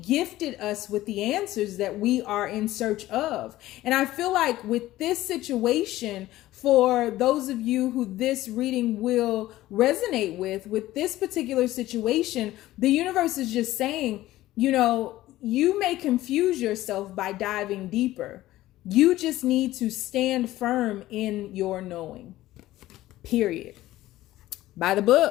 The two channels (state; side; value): quieter; right; 15.8 dB